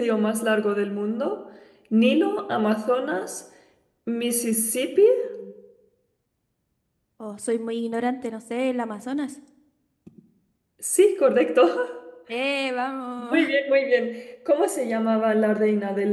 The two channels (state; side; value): identical; both; correlation 1.00